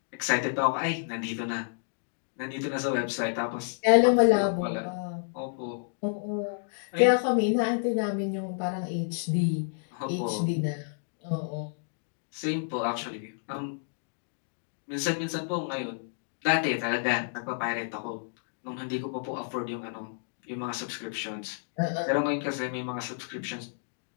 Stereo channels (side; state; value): right; silent; digital silence